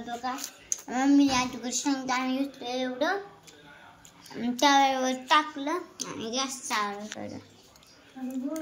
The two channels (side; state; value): both; identical; correlation 1.00